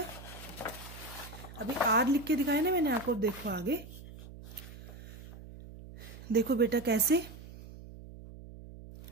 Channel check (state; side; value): noise; right; hum, 15 dB below the sound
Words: अभी R लिख के दिखाया ना मैंने आपको, देखो आगे देखो बेटा कैसे।